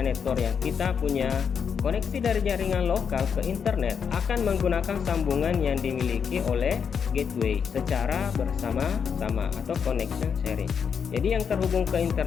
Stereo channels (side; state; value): right; quieter; 6.9 dB